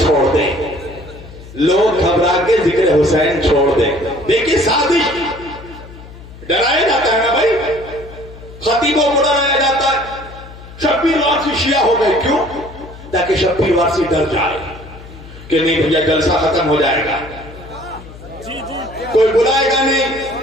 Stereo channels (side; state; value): left; noise; hum, 17 dB below the sound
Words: دیں، لوگ گھبرا کے ذکر حسین چھوڑ دیں۔ دیکھیے سازش، ڈرایا جاتا ہے نا بھائی، خطیبوں کو ڈرایا جاتا ہے، شبیر وارسی شیعہ ہو گئے۔ کیوں؟ تاکہ شبیر وارسی ڈر جائے کہ نہیں بھیا جلسہ ختم ہو جائے گا، کوئی بلائے گا